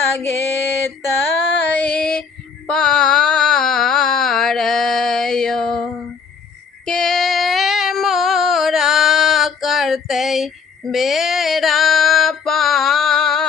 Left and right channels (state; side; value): quieter; right; 5.7 dB